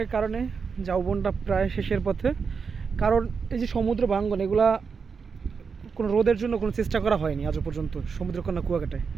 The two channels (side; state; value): left; quieter; 5.6 dB